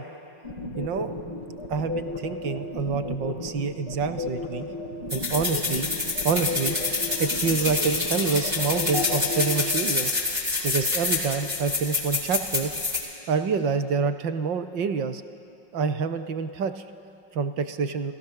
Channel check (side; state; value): left; late; 5.5 ms